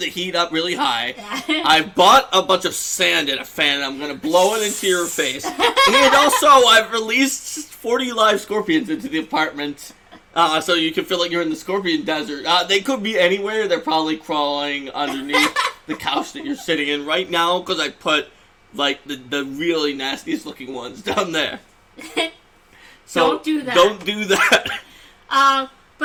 heat up really high. I bought a bunch of sand in a fan, and I'm going to blow it into your face. And also, I've released 40 live scorpions into the apartment, so you can feel like you're in the Scorpion Desert. They could be anywhere. They're probably crawling underneath the couch that you're sitting in right now, because I put, like, the really nastiest looking ones down there. So don't do that. Don't do that.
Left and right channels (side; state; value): both; identical; correlation 1.00